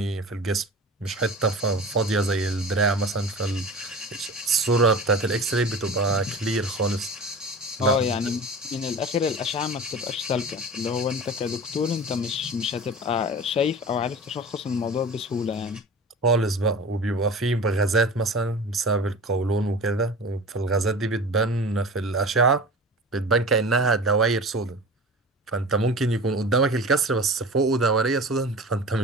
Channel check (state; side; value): normal; both; correlation 0.35